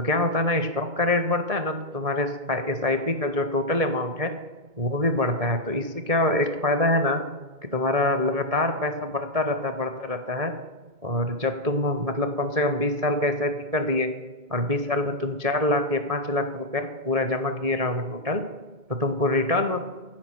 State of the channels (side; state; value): left; late; 2.2 ms